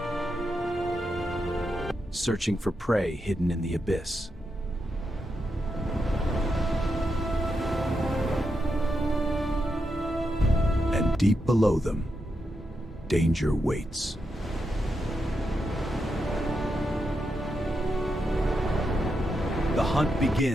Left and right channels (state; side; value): normal; both; correlation 0.84